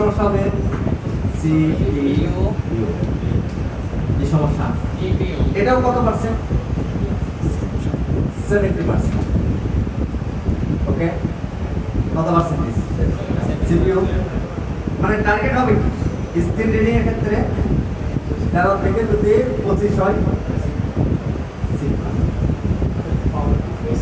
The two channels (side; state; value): both; identical; correlation 1.00